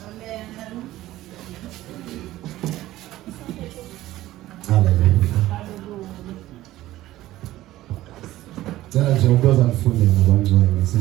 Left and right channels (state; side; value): quieter; left; 15.5 dB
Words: Hallelujah. Ngicela nje ukuza nifunde ngabangcwele